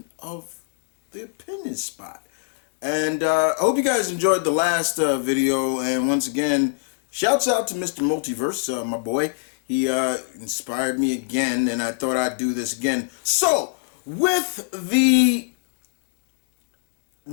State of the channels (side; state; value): right; silent; digital silence